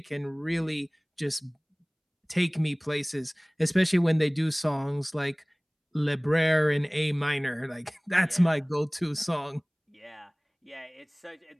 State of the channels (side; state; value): both; identical; correlation 1.00